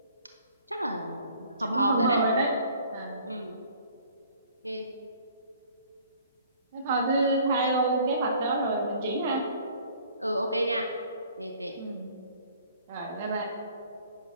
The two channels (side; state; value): both; inverted; correlation -0.55